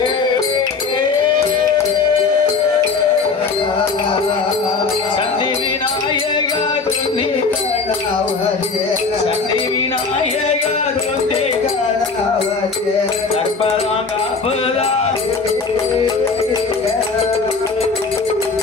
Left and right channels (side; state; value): right; quieter; 4.6 dB